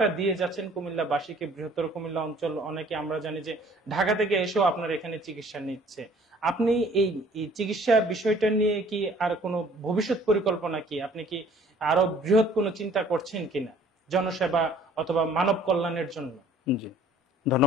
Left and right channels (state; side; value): normal; both; correlation 0.55